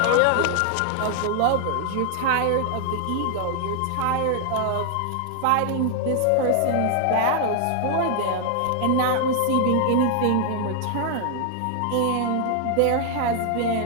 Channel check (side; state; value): both; different; correlation 0.00